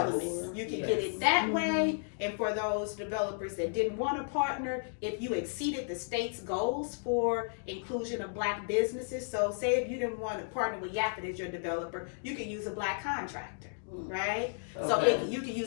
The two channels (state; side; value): silent; right; digital silence